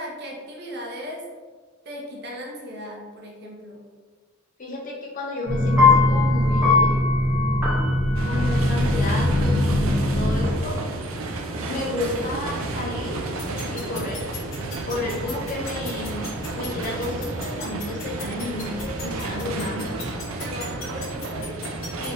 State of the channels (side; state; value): both; normal; correlation 0.55